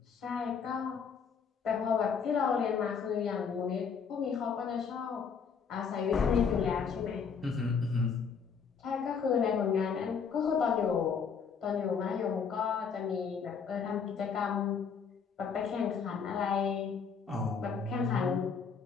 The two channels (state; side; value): quieter; right; 6.2 dB